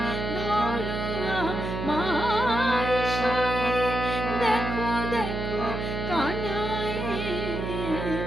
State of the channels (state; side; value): noise; right; hum, 4 dB below the sound